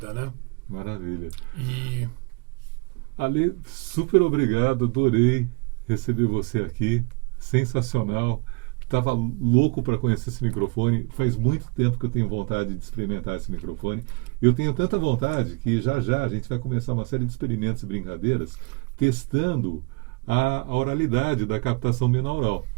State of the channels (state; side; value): quieter; left; 29.4 dB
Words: né? Maravilha. E Ale, super obrigado, adorei receber você aqui, sensacional. Estava louco para conhecer esse microfone. Faz muito tempo que eu tenho vontade de experimentar esse microfone. Eu tenho tanta vontade que já a gente vai começar uma série de experimentos e brincadeiras testando a oralidade da captação binaural.